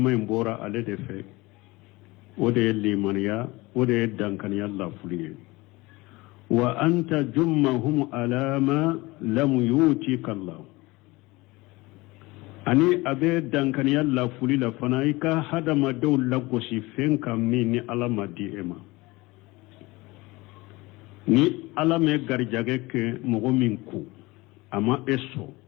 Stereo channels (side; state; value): right; quieter; 22.0 dB